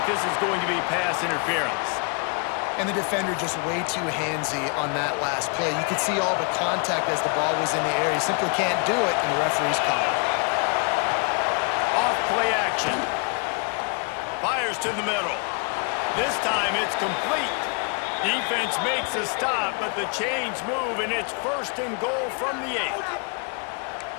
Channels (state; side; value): quieter; right; 36.4 dB